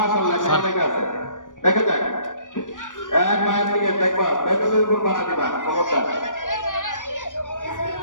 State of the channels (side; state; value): right; late; 0.87 ms